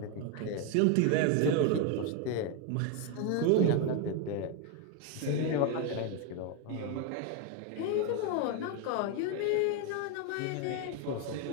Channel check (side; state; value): both; different; correlation 0.01